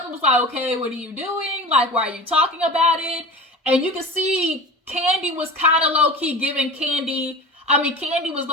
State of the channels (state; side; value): normal; both; correlation 0.34